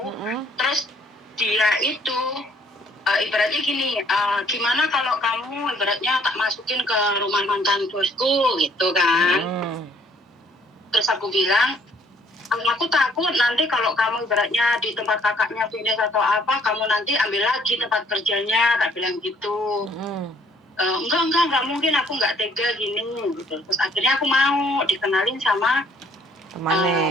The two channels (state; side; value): normal; both; correlation 0.62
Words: Terus dia itu ibaratnya gini, gimana kalau kamu ibaratnya tak masukin ke rumah mantan bosku gitu kan. Terus aku bilang, aku takut nanti kalau kamu ibaratnya di tempat kakaknya finish atau apa, kamu nanti ambil lagi tempat kerjanya, tak bilang gitu. Enggak mungkin, aku nggak tega gini gitu. Terus akhirnya aku mau dikenalin sama